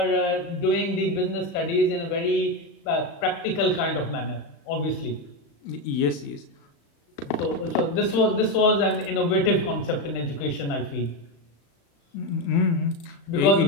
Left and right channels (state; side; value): late; right; 36 ms